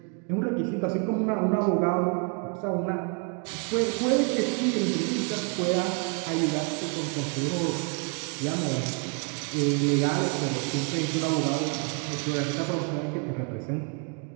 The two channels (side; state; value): left; quieter; 36.9 dB